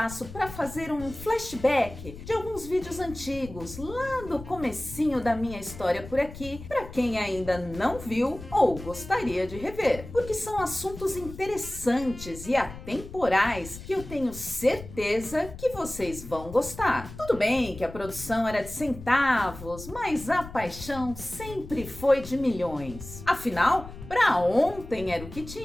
para fazer um flashback de alguns vídeos antigos, lá do comecinho da minha história por aqui, para quem ainda não viu ou gostaria de rever, porque são assuntos interessantes e atemporais que eu tenho certeza que vocês vão gostar. Tudo bem que a produção era de centavos, mas a paixão sempre foi de milhões. Afinal, para ontem era o que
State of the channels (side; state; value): left; noise; rumble, 13 dB below the sound